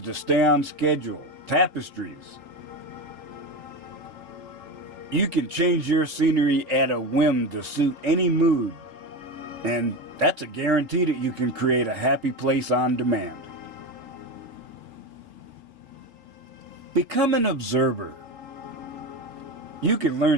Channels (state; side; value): late; left; 4.1 ms